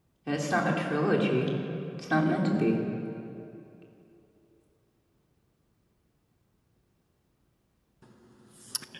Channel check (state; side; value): identical; both; correlation 1.00